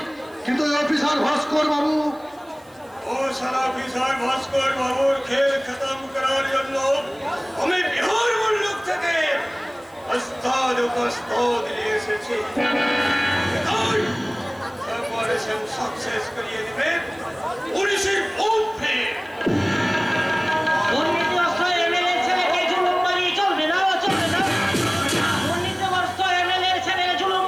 কিন্তু ওই অফিসার ভাস্কর বাবু, ও সারা অফিসার ভাস্কর বাবুর খেল খতম করার জন্য আমি বিহার মুল্লুক থেকে ওস্তাদ উপস্তাদ নিয়ে এসেছি। অপারেশন সাকসেস করিয়ে দেবে পুলিশের ওপরে। দুর্নীতিগ্রস্ত এমএলএ ছেলেকে জুলুমবাজি চলবে না, চলবে না। দুর্নীতিগ্রস্ত এমএলএ ছেলে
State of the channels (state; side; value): noise; right; hiss, 29 dB below the sound